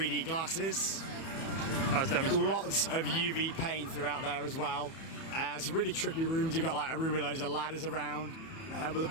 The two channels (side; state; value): right; late; 31 ms